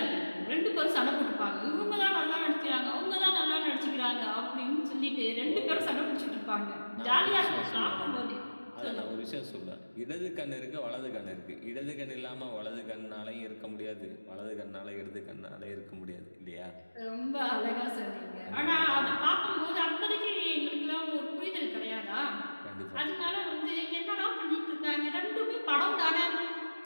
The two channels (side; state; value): both; inverted; correlation -1.00